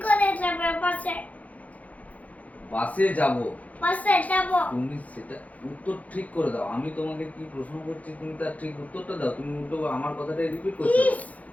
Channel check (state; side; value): late; right; 0.071 ms